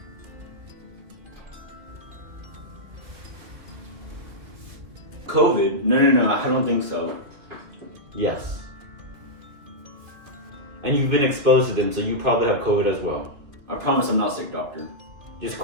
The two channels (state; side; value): late; left; 2.3 ms